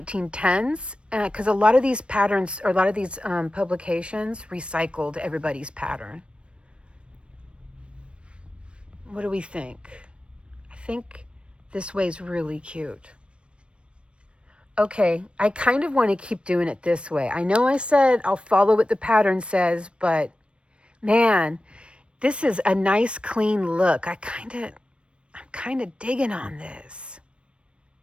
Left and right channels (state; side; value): late; left; 0.059 ms